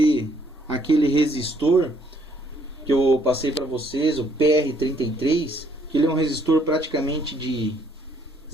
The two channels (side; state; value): both; normal; correlation 0.67